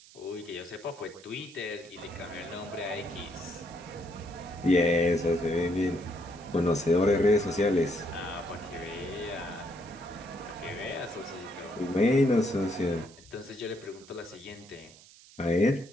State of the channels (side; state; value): right; noise; hiss, 22 dB below the sound